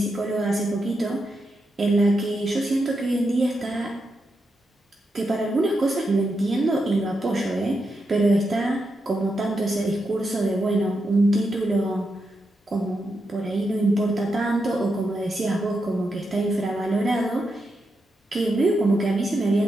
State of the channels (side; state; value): both; normal; correlation 0.85